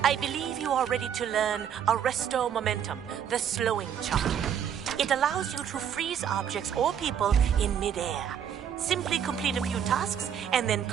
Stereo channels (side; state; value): left; quieter; 8.7 dB